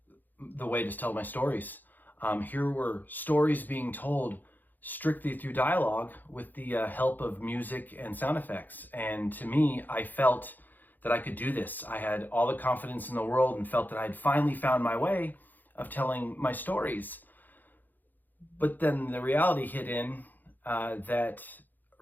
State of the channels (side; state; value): right; late; 0.086 ms